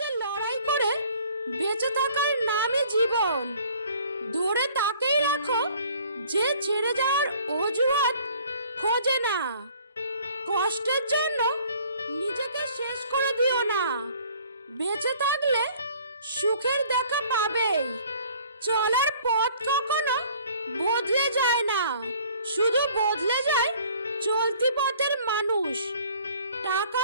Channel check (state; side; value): inverted; both; correlation -0.54